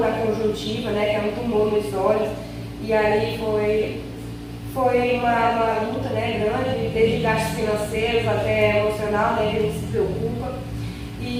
conjuntiva, né, que é um tumor nos olhos, e aí foi uma luta, né, grande, desde gastos financeiros até emocional, né, que a gente se preocupa,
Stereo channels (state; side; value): identical; both; correlation 1.00